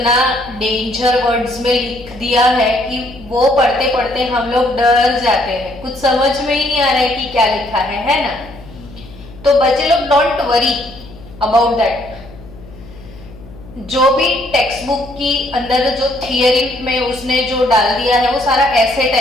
डेंजर वर्ड्स में लिख दिया है कि वो पढ़ते पढ़ते हम लोग डर जाते हैं, कुछ समझ में ही नहीं आ रहा है कि क्या लिखा है ना। तो बच्चे लोग डोंट वरी अबाउट दैट। जो भी टेक्स्ट बुक की अंदर जो थियरी में उसने जो डाल दिया है वो सारा ऐसे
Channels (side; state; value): left; noise; hum, 19 dB below the sound